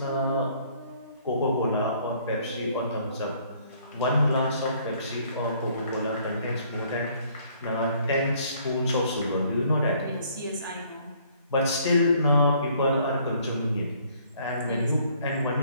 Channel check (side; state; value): both; inverted; correlation -0.62